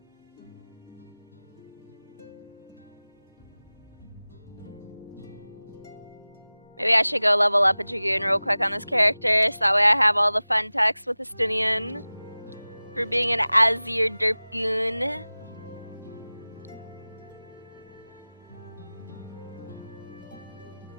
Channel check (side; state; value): both; inverted; correlation -0.99